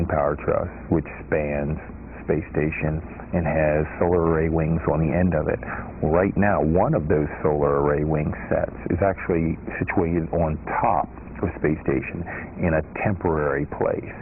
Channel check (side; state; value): both; identical; correlation 1.00